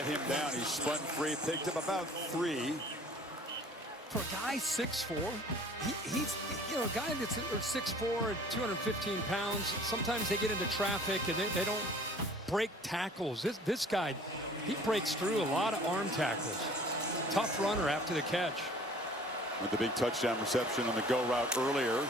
him down. He spun free, picked up about 3. For a guy 6'4", he's a guy that's 6'4", 215 pounds. Sometimes they get into traffic and they don't break tackles. This guy, he breaks through a lot of arm tackles. Tough runner after the catch. With the big touchdown reception on the go route earlier.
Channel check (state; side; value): normal; both; correlation 0.50